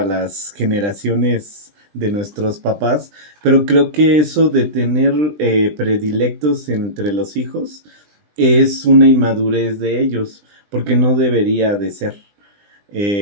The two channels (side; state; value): left; late; 20 ms